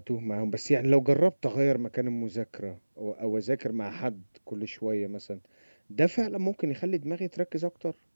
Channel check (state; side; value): inverted; both; correlation -1.00